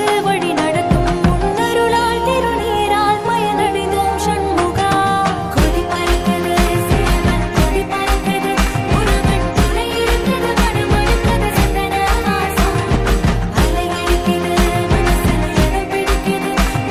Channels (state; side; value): identical; both; correlation 1.00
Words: வழி நடத்தும் முன்னருளால் திருநீரால் மயனடைந்தோம் சண்முகா. கொடி பறக்குது சேவல் கொடி பறக்குது, முருகன் துணை இருக்குது மனமடுக்குது சந்தன வாசம். அலை அடிக்குது மனசுல இடம் பிடிக்குது,